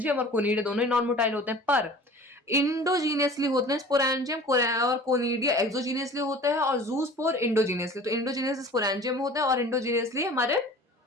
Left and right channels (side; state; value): both; normal; correlation 0.43